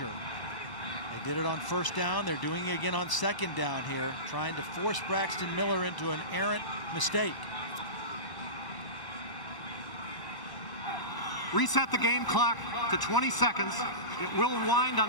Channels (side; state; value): right; late; 1.0 ms